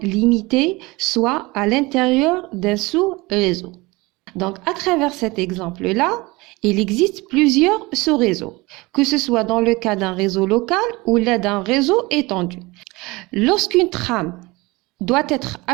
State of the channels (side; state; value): left; quieter; 22.9 dB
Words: limitée, soit à l'intérieur d'un sous-réseau. Donc, à travers cet exemple-là, il existe plusieurs sous-réseaux, que ce soit dans le cas d'un réseau local ou d'un réseau étendu. Lorsqu'une trame doit être